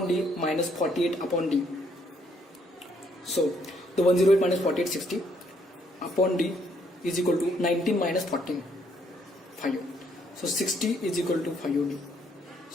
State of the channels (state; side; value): normal; both; correlation 0.70